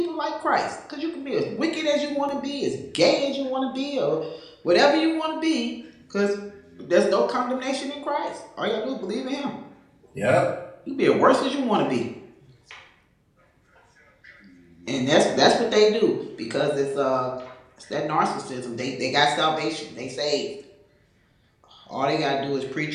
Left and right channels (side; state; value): both; identical; correlation 1.00